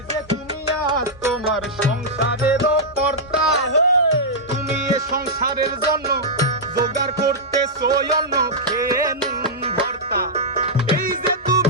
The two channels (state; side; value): normal; both; correlation -0.09